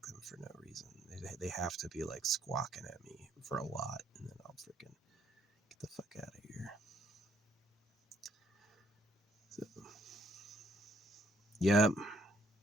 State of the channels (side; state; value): both; normal; correlation 0.67